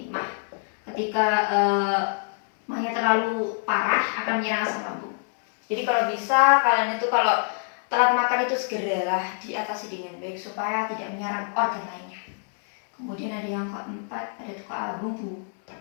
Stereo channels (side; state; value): right; silent; 61 dB below the other